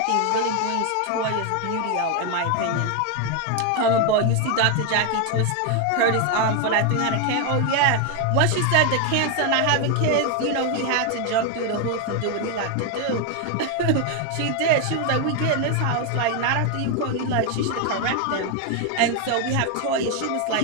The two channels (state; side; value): different; both; correlation 0.01